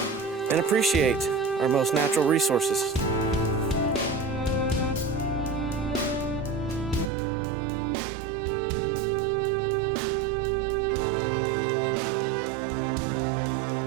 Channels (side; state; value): left; drops out; at 7.1 s